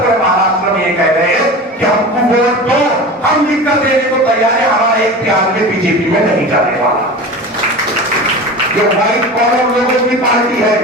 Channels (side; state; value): both; normal; correlation 0.32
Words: पूरे महाराष्ट्र में ये कह रहे हैं कि हमको वोट दो, हम लिख कर देने को तैयार है, हमारा एक भी आदमी बीजेपी में नहीं जाने वाला। जो व्हाइट कॉलर लोगों की पार्टी है,